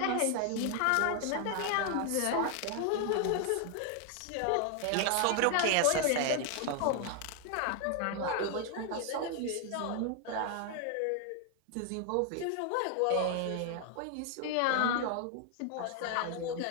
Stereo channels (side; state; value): both; different; correlation 0.00